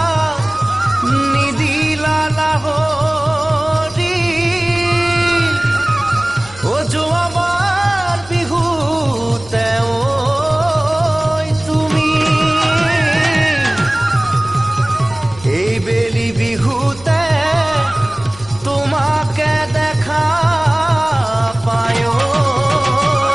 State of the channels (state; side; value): noise; left; hum, 20 dB below the sound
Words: নিদিলা লাহৰি ও যোৱাবাৰ বিহুতে তুমি এই বেলি বিহুতে তোমাকে দেখা পায়